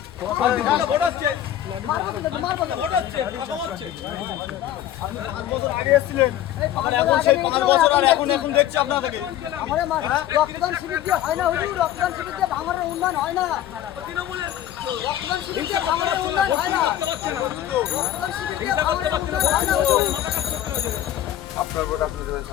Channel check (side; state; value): right; quieter; 12.1 dB